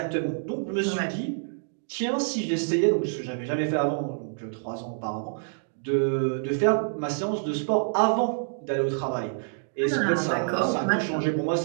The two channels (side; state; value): left; silent; digital silence